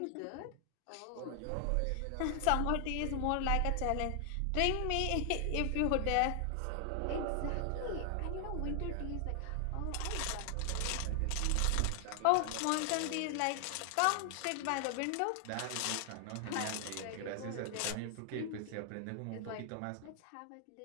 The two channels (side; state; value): both; different; correlation 0.00